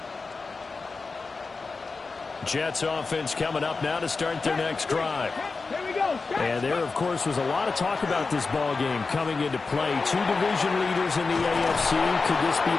Jets offense coming up now to start their next drive. And there, of course, was a lot of talk about this ball game coming into play. 2 division leaders in the AFC. Could this be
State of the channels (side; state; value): right; quieter; 4.2 dB